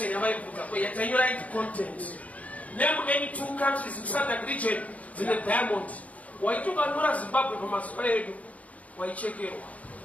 yavaibvunza yatanyora content. Name any two countries in SADC region in the diamond. Waitokanyora Zimbabwe pamazuva edu waichekerwa.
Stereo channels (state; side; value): late; right; 0.069 ms